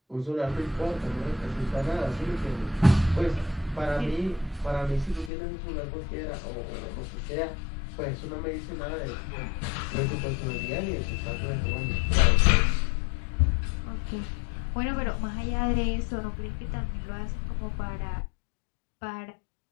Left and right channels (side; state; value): right; drops out; at 5.3 s